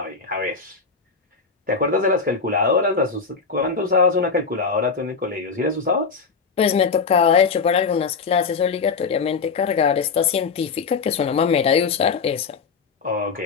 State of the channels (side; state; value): right; quieter; 5.2 dB